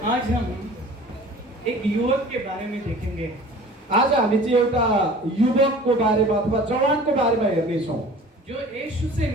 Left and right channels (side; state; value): both; normal; correlation 0.44